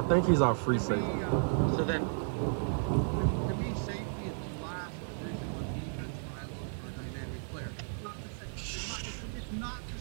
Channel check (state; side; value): silent; left; 55 dB below the other